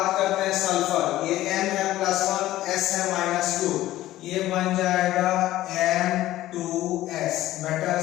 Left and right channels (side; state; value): right; quieter; 15.1 dB